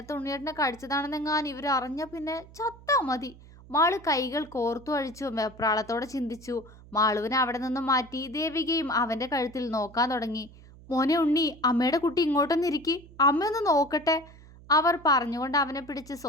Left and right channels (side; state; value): right; noise; hum, 21 dB below the sound